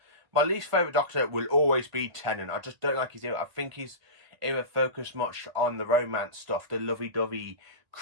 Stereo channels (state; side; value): late; left; 1.8 ms